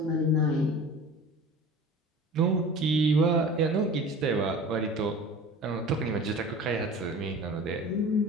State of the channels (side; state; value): both; normal; correlation 0.39